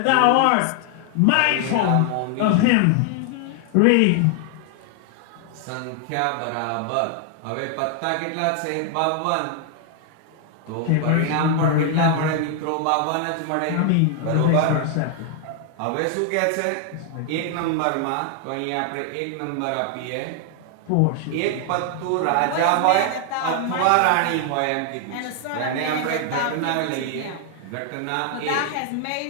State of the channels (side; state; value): both; different; correlation 0.00